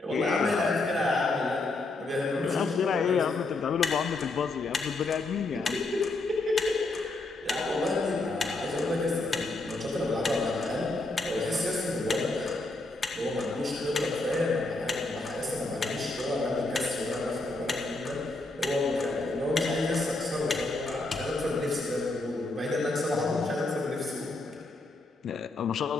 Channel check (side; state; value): right; quieter; 3.1 dB